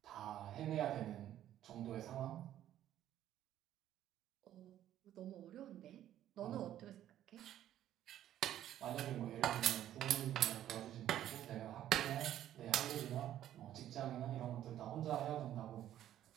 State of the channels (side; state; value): left; quieter; 11.9 dB